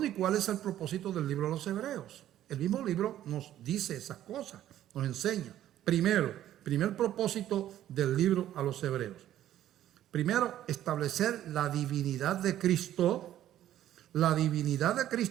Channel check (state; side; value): quieter; left; 12.3 dB